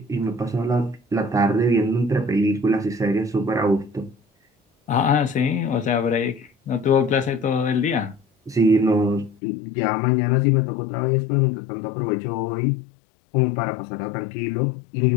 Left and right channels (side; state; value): right; drops out; at 9.3 s